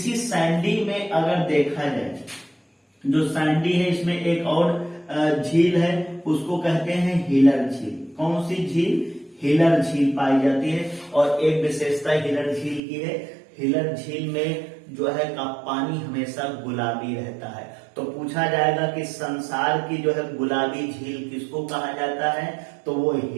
सैंडी में अगर देखा जाए, जो सैंडी है इसमें एक और झील है, उसको कहते हैं हिलर झील। कौन सी झील, हिलर झील पाई जाती है। और एक विशेषता हिलर झील की है, हिलर झील में जो है का पानी हमेशा गुलाबी रहता है। तो पूछा जाएगा कि संसार की जो है गुलाबी झील किसको कहा जाता है, तो वो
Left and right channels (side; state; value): left; drops out; at 12.8 s